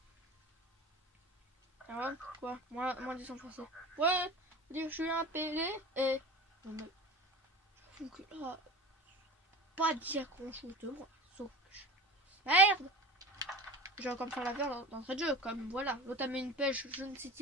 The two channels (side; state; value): both; normal; correlation 0.34